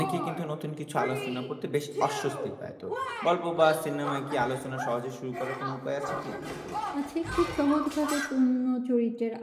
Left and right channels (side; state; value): both; identical; correlation 1.00